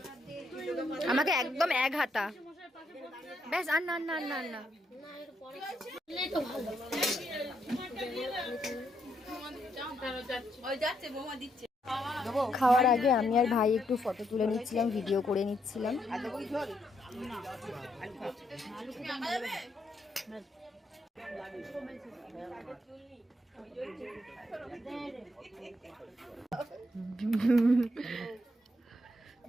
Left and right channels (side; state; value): both; normal; correlation 0.77